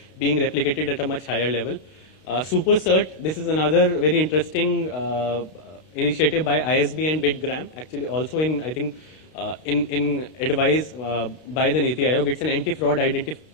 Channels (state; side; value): late; right; 32 ms